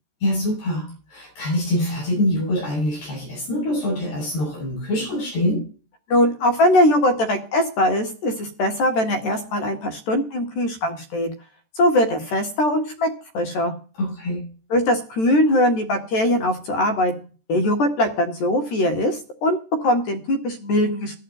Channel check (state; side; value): late; right; 14 ms